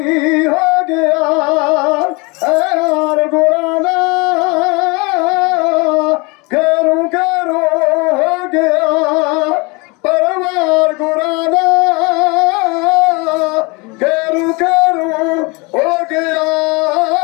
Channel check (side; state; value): right; quieter; 27.9 dB